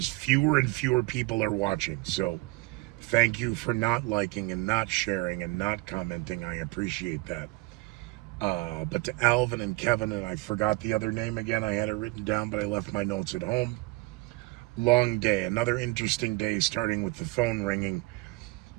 fewer and fewer people are watching. So thank you for not liking and not sharing and not commenting. I appreciate that. But to Alvin and Kevin, and I forgot the other name again. I had it written down, but I left my notes at home. Long day, another interesting day, starting with the phone ringing.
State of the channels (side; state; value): left; quieter; 23.1 dB